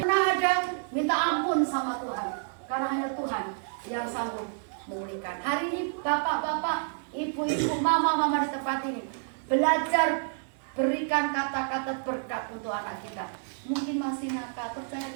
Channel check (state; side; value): silent; left; digital silence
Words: ada minta ampun sama Tuhan, karena hanya Tuhan yang sanggup memulihkan. Hari ini bapak-bapak, ibu-ibu, mama di tempat ini belajar berikan kata-kata berkat untuk anak kita. Mungkin masih nakal, percaya